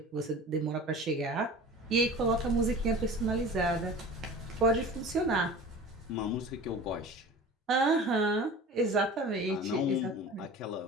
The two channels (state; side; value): normal; both; correlation 0.39